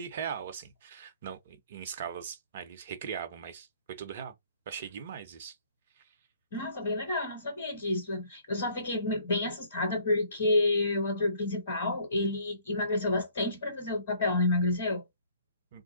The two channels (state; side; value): inverted; both; correlation -0.59